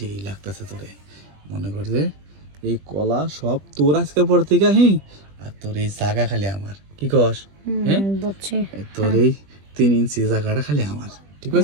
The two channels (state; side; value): late; left; 20 ms